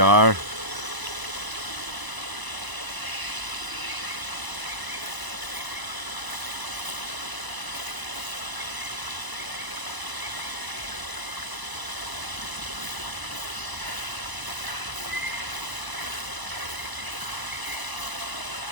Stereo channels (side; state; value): left; late; 1.0 ms